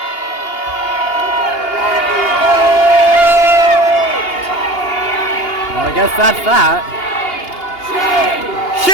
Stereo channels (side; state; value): right; late; 2.8 ms